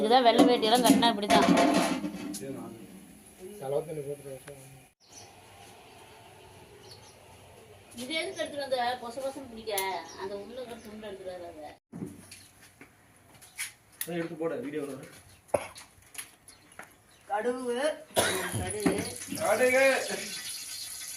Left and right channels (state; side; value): identical; both; correlation 1.00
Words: தான் வெள்ளை வேட்டியெல்லாம் கட்டினா இப்படி தான். செலவு தண்ணி போட்டு இது எதுக்கு எடுத்துட்டு வந்த? பொச பொசம் பிடிக்க அந்த உள்ள துண்டு எடுத்துட்டு வர. அதை எடுத்து போட வீடியோ கடுகு கடுகு